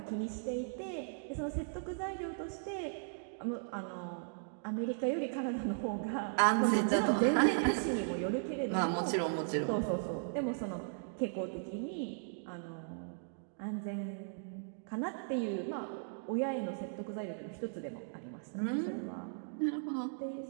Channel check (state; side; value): silent; left; digital silence